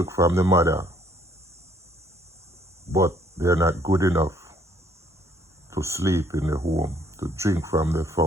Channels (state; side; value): normal; both; correlation 0.65